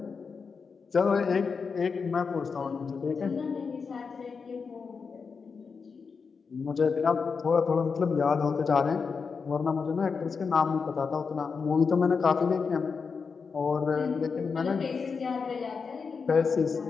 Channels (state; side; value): quieter; right; 5.3 dB